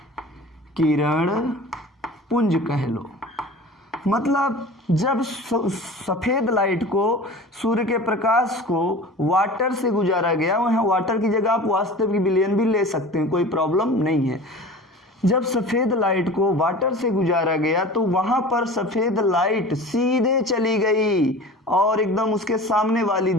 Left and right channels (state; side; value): normal; both; correlation 0.38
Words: किरण पुंज कह लो। मतलब जब सफ़ेद लाइट को, सूर्य के प्रकाश को वाटर से गुजारा गया, वहाँ वाटर की जगह आप वास्तविक विलयन भी ले सकते हैं, कोई प्रॉब्लम नहीं है। जब सफ़ेद लाइट को वाटर से गुजारा गया तो वहाँ पर सफ़ेद लाइट सीधे चली गई और एकदम उसके सामने वाली